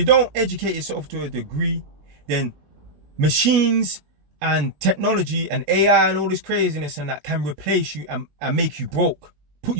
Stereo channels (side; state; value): left; late; 20 ms